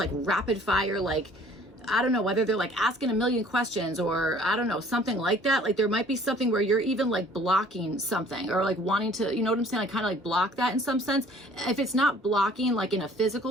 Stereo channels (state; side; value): normal; both; correlation 0.54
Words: rapid fire, like, I don't know, whether they're like asking a million questions, or I don't know, something like that. Like there might be something where you're even like blocking something, or like wanting to, you know what I'm saying? Like kind of like block that in some sense. If it's not blocking like in a